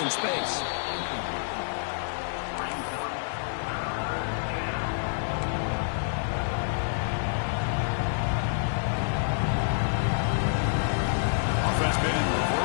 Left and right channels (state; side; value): silent; right; digital silence